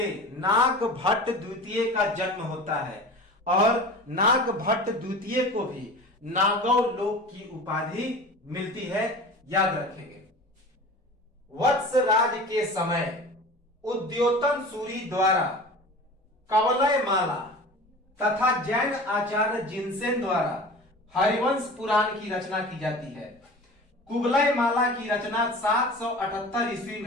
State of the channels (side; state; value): both; normal; correlation 0.37